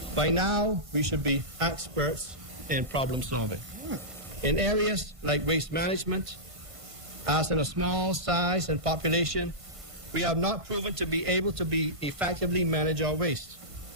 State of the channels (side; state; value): left; late; 1.5 ms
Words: By now, we should be experts in problem solving. In areas like waste management, as in a small size and population, we have not proven to be able to effectively manage our waste.